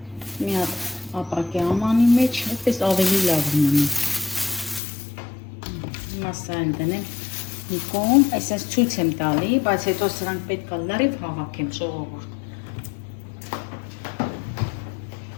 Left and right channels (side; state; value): right; drops out; at 4.8 s